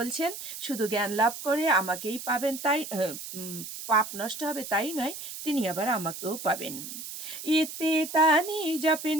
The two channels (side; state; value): right; noise; hiss, 9 dB below the sound